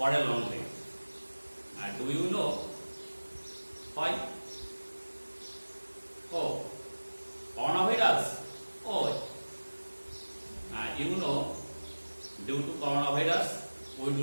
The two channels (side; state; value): both; inverted; correlation -1.00